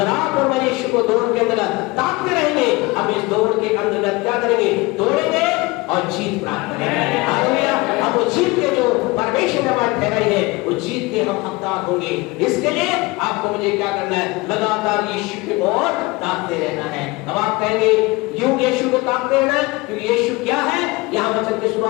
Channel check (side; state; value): right; quieter; 23.3 dB